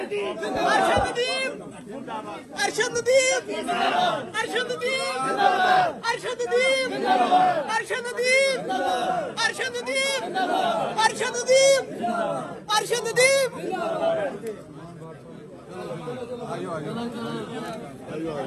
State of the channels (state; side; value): identical; both; correlation 1.00